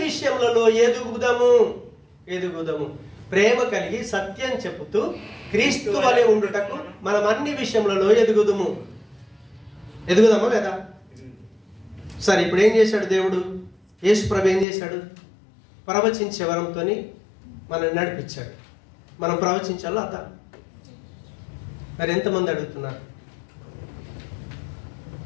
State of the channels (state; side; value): drops out; right; at 14.7 s